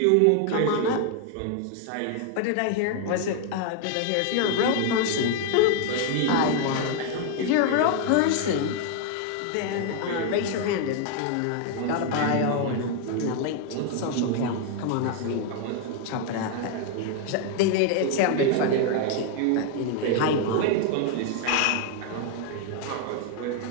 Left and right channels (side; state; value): both; different; correlation 0.00